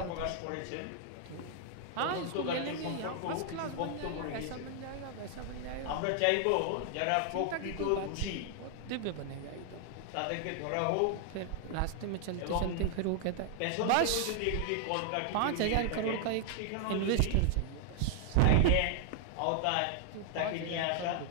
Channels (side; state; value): both; different; correlation 0.00